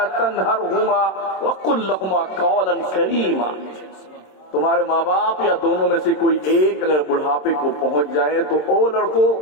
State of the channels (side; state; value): right; late; 27 ms